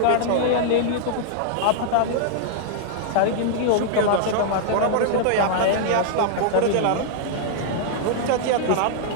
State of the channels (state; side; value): different; both; correlation -0.01